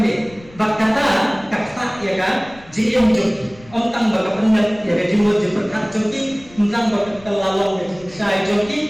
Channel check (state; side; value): noise; left; rumble, 23 dB below the sound